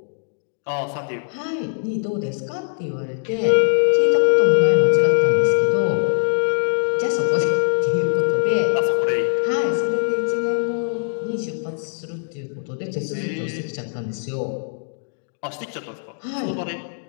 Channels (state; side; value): silent; right; digital silence